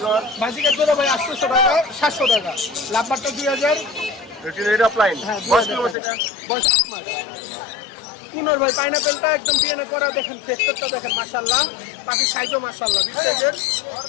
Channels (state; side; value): drops out; right; at 6.0 s